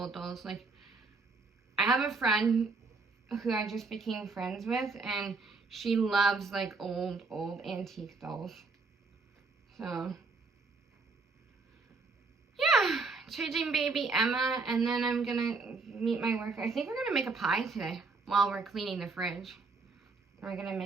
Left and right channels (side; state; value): left; quieter; 4.0 dB